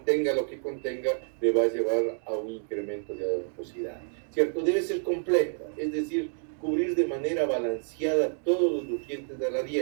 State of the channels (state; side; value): silent; left; 59 dB below the other